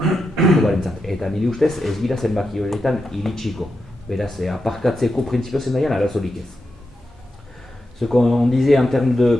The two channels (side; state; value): both; normal; correlation 0.87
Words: Eta nire ustez ez gira zenbaki horietan iritsiko. Beraz, aparkatzeko printzipio zendaian arazorik ez. Ce qu'on disait en termes de